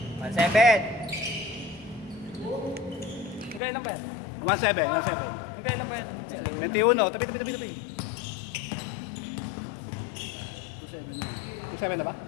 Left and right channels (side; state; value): right; drops out; at 3.6 s